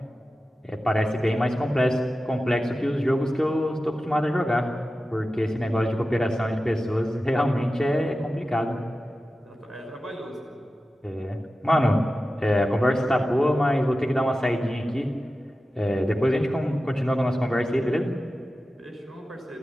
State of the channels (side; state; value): both; normal; correlation 0.94